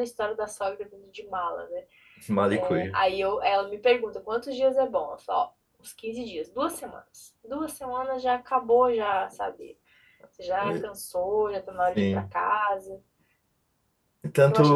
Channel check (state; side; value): identical; both; correlation 1.00